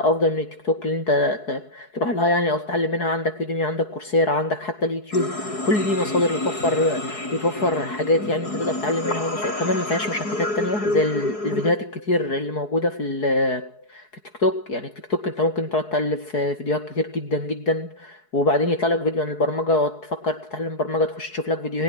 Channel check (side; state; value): right; late; 4.7 ms